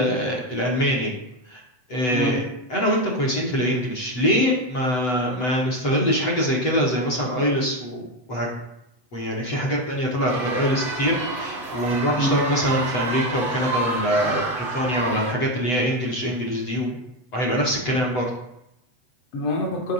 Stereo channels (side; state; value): right; late; 8.0 ms